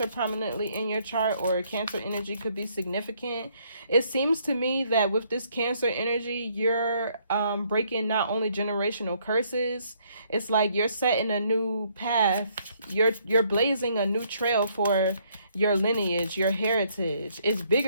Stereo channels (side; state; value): both; inverted; correlation -0.68